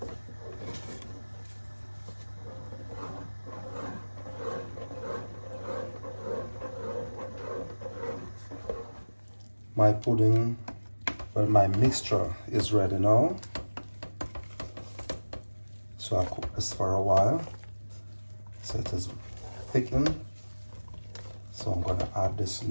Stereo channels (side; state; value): both; inverted; correlation -1.00